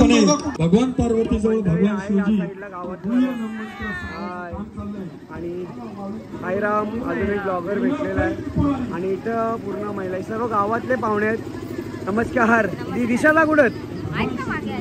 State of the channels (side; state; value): both; identical; correlation 1.00